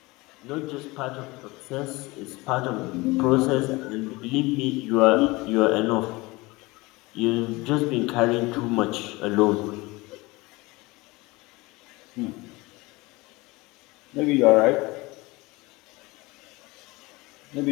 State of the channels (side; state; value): right; quieter; 22.7 dB